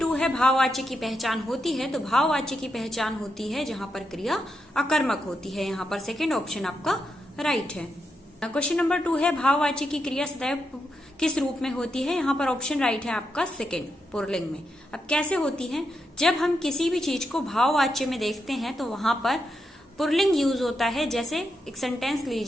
है भाववाच्य की पहचान होती है। तो भाववाच्य की पहचान होती है जहां पर क्रिया अकर्मक होती है। यहाँ पर सेकेंड ऑप्शन आपका राइट है। क्वेश्चन नंबर 2 है भाववाच्य की क्रिया सदैव किस रूप में होती है। यहाँ पर ऑप्शन राइट है आपका सेकेंड, पुल्लिंग में। अब कैसे होती है, जब हम किसी भी चीज को भाववाच्य में देखते हैं तो वहां पर पुल्लिंग यूज होता है। जैसे एक सेंटेंस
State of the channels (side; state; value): both; normal; correlation 0.84